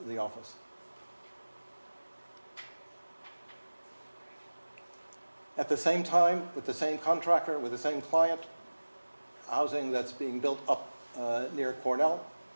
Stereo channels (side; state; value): both; inverted; correlation -1.00